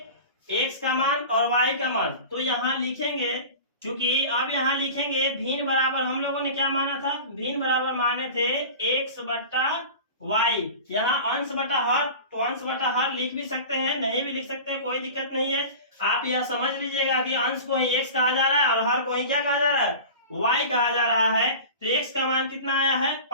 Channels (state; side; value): inverted; both; correlation -0.34